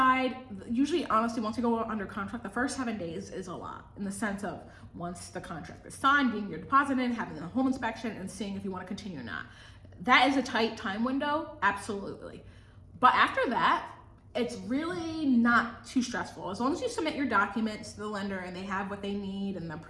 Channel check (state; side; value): identical; both; correlation 1.00